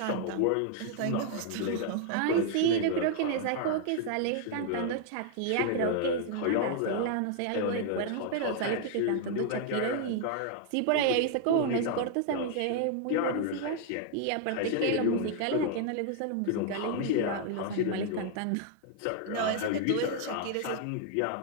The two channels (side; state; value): both; different; correlation 0.00